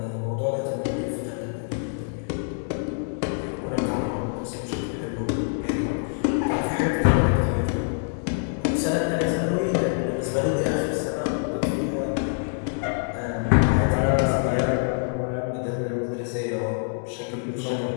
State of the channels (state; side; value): silent; right; digital silence